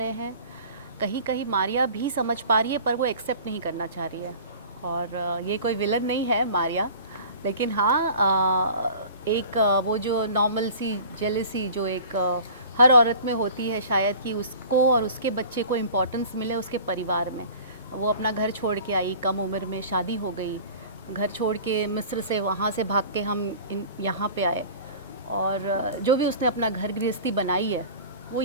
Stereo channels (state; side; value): inverted; both; correlation -0.43